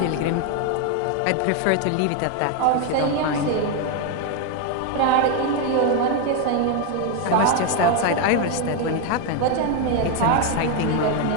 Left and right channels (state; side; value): different; both; correlation 0.01